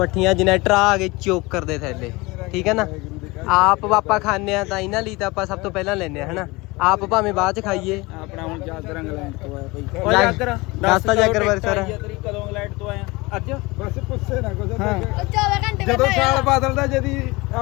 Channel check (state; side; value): quieter; right; 23.5 dB